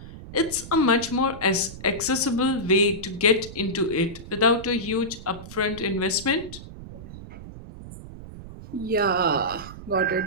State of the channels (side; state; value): right; noise; rumble, 14 dB below the sound